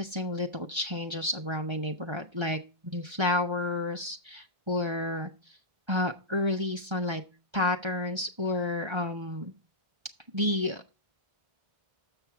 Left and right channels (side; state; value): left; late; 1.3 ms